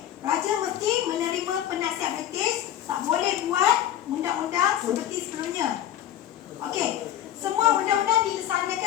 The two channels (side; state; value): right; quieter; 11.6 dB